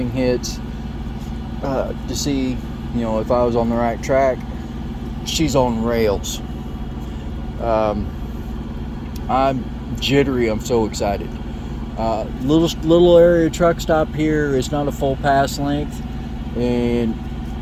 hits to see, if I was on the right track. She's on rails. I'm jittery. I'm so excited. Little area truck stop here. It's not a full pass length, and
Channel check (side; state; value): both; identical; correlation 1.00